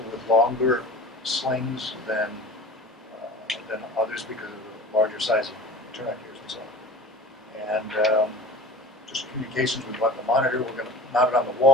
with longer slings than others because of the larger size of connectors and so on. And just communications, we bought the monitor, we're going to mount it on the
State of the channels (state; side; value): normal; both; correlation 0.39